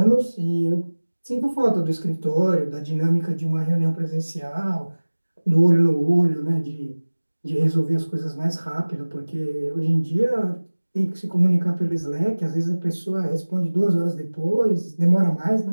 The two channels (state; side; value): inverted; both; correlation -1.00